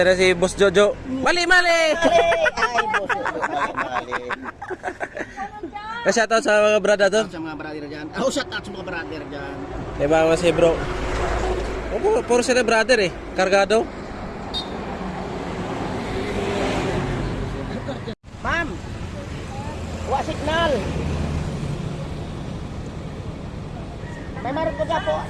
na si Boss Jojo. Mali! Ay, boss. Mali. Shoutout sa mga brother to. Sa mga brother dyan. Oh, shout out sa mga brother dyan. Diba mga si bro? Puro sila brother eh. Kargado. Ma'am! Wa signal! May marot ko dyan po,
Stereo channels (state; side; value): identical; both; correlation 1.00